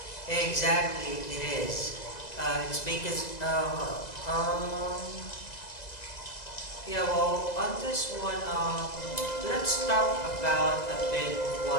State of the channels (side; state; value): right; late; 2.0 ms